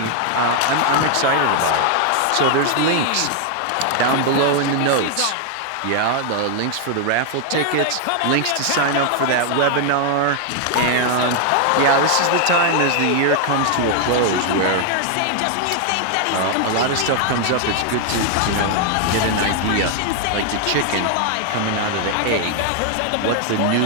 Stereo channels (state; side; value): different; both; correlation 0.00